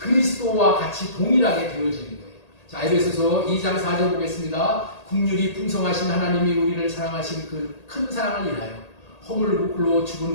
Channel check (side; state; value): right; late; 1.8 ms